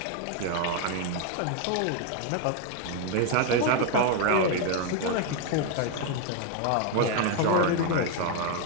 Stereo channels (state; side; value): different; both; correlation 0.01